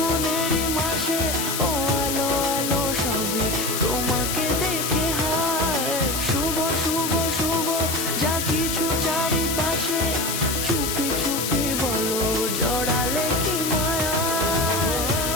মাসে, ও আলো আলো সবই তোমাকে দেখে হায়। শুভ শুভ শুভ যা কিছু চারিপাশে, চুপি চুপি বলো জড়ালে কি মায়া।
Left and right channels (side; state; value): left; noise; hiss, 2 dB below the sound